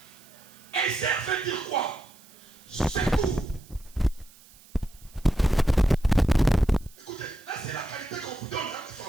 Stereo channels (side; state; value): right; noise; hiss, 25 dB below the sound